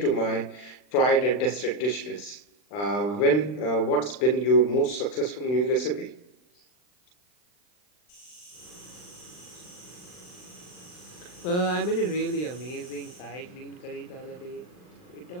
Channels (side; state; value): right; late; 39 ms